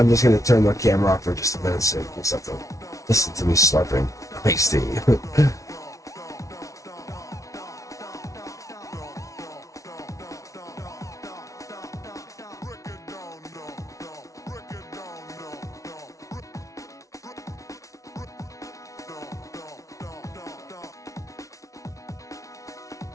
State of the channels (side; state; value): right; late; 0.16 ms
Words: just going to turn the camera off for just a minute so you guys have to listen to me slurping iced tea.